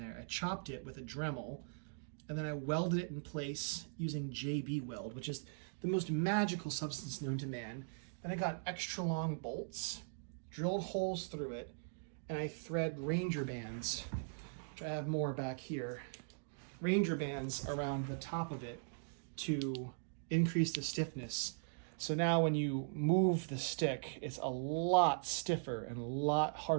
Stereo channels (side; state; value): left; silent; digital silence